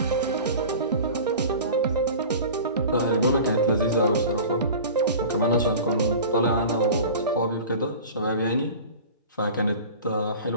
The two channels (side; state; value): both; inverted; correlation -0.37